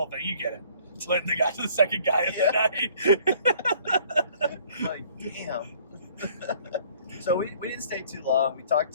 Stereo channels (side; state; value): both; inverted; correlation -0.56